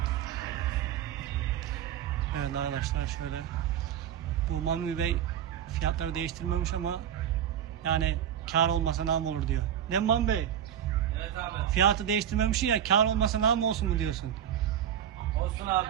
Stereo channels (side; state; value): left; quieter; 9.8 dB